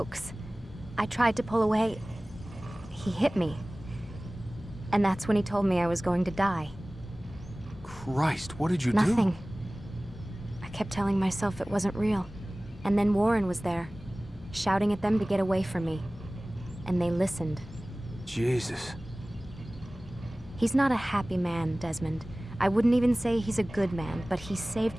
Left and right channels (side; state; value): both; normal; correlation 0.98